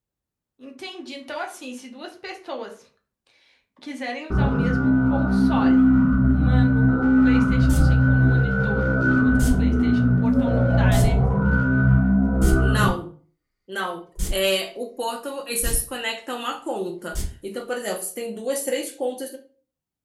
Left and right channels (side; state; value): both; identical; correlation 1.00